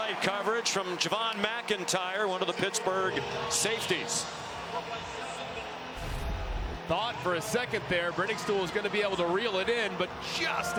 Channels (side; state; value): both; identical; correlation 1.00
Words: coverage from Javon McIntyre, one of the Pittsburgh safeties. Thought for a second there Brenningstool was going to be able to reel it in, but just